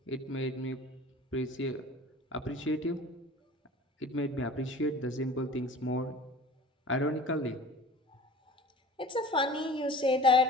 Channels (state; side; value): normal; both; correlation 0.42